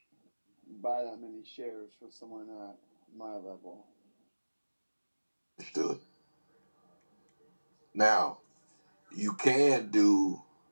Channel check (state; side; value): inverted; both; correlation -1.00